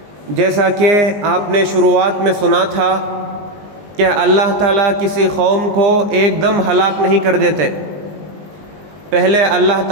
جیسا کہ آپ نے شروعات میں سنا تھا کہ اللہ تعالیٰ کسی قوم کو ایک دم ہلاک نہیں کر دیتے، پہلے اللہ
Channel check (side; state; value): left; late; 20 ms